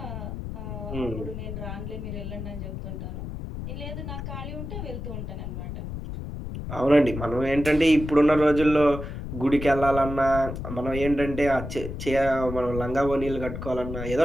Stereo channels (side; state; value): left; noise; rumble, 7 dB below the sound